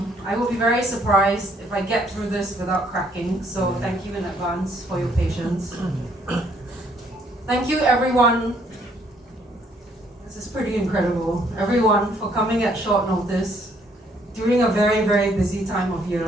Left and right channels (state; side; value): normal; both; correlation 0.66